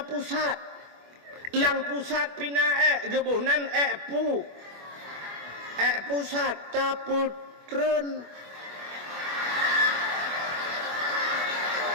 pusat lang pusat pina gebuhnan pusat taputren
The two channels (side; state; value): left; late; 25 ms